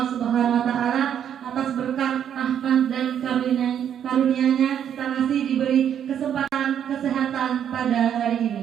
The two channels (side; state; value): left; quieter; 9.2 dB